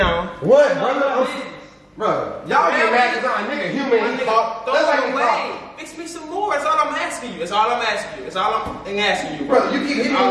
What, No, brother? Bro, y'all get mad because I'm a nigga human My and nigga, talk. throw That's like it you away. talk. Fix me some more. That's all I'm asking you. That's all I'm asking you. That's all I'm asking you, Brother, you keep hitting me All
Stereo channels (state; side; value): identical; both; correlation 1.00